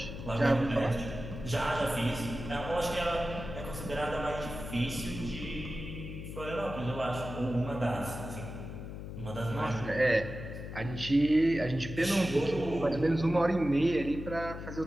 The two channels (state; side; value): noise; left; hum, 9 dB below the sound